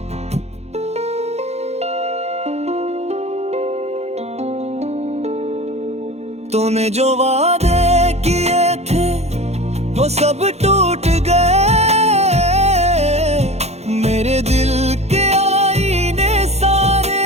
तूने जो वादे किए थे वो सब टूट गए। मेरे दिल के आईने सारे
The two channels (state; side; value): late; left; 0.31 ms